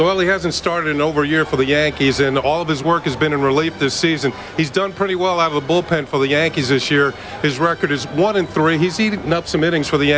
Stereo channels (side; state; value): both; identical; correlation 1.00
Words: he hasn't started in over a year for the Yankees, and all of his work has been in relief this season. He's done pretty well out of the bullpen for the Yankees this year. His record is 1-3. He's eaten up some innings for the